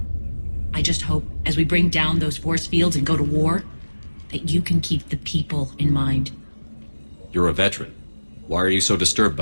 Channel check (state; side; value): inverted; both; correlation -1.00